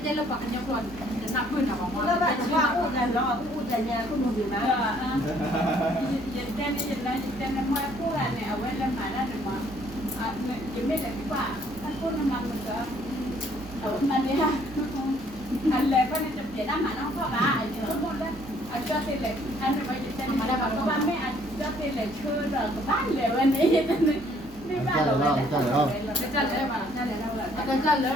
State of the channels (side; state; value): both; normal; correlation 0.63